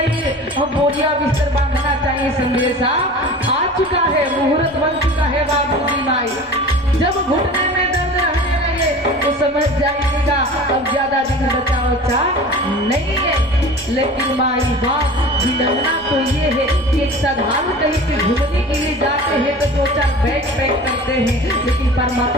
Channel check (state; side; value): normal; both; correlation 0.38